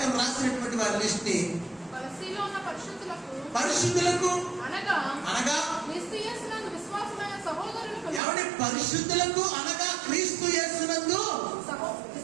రాసినటువంటి వారి లిస్ట్ ని పరిశుద్ధులకు అనగా ఎవరి పరిశుద్ధులకు అనగా క్రీస్తు యేసునందు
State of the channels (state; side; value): drops out; left; at 8.2 s